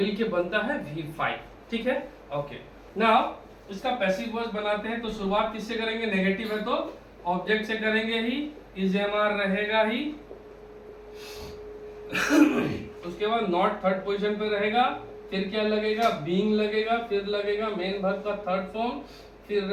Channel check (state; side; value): identical; both; correlation 1.00